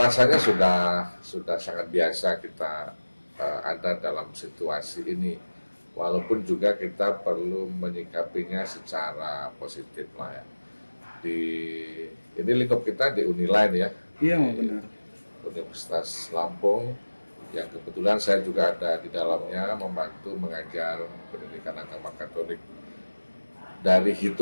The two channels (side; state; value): both; inverted; correlation -1.00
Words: rasanya sudah sangat biasa kita ada dalam situasi ini. Walaupun juga kita perlu menyikapinya secara positif lah ya. Ini lingkup kita di Uniline ya. Iya, benar. Universitas Lampung yang kebetulan saya juga ada di dalamnya membantu mengajar pendidikan agama Katolik. Dari